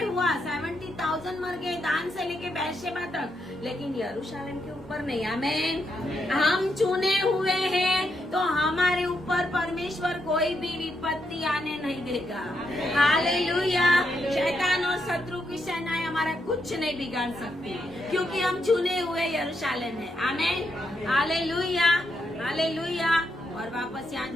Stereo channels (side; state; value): both; normal; correlation 0.80